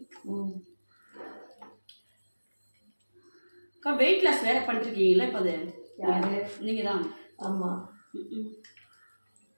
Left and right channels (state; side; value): inverted; both; correlation -1.00